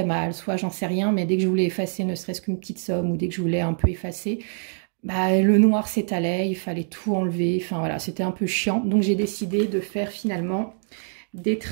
mal, soit j'en sais rien, mais dès que je voulais effacer ne serait-ce qu'une petite somme ou dès que je voulais un peu effacer, le noir s'étalait, il fallait tout enlever. Enfin voilà, c'était un peu chiant. Donc j'ai décidé de faire finalement des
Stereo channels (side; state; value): left; silent; digital silence